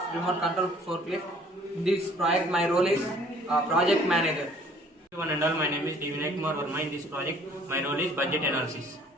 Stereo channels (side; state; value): both; normal; correlation 0.56